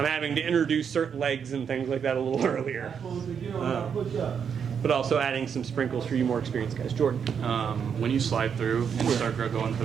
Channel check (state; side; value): quieter; left; 7.2 dB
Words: having to introduce certain legs and things like that a little earlier. But also adding some sprinkles for you more experienced guys. Jordan. When you slide through and start going for